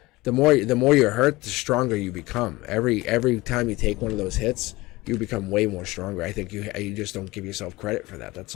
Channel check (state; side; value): quieter; right; 20.5 dB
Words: the more you're hurt, the stronger you become. Every time you take one of those hits, you become way more stronger. I think you just don't give yourself credit for that. That's